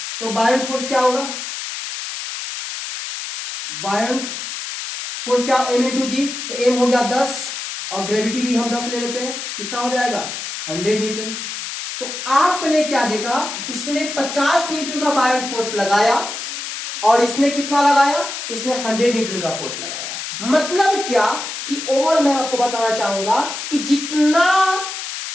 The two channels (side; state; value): left; noise; hiss, 7 dB below the sound